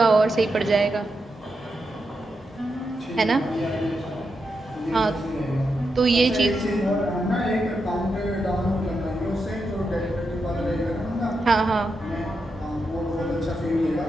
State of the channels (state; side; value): normal; both; correlation 0.85